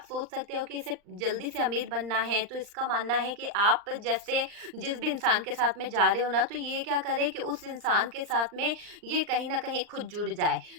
सोच सकते हो कि इसे जल्दी से अमीर बनना है, तो इसका मानना है कि आप जैसे जिस भी इंसान के साथ में जा रहे हो ना, तो ये क्या करे कि उस इंसान के साथ में ये कहीं ना कहीं खुद जुड़ जाए।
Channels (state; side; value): late; left; 39 ms